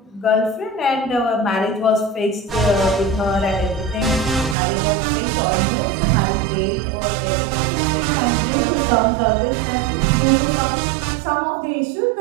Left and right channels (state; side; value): drops out; left; at 4.5 s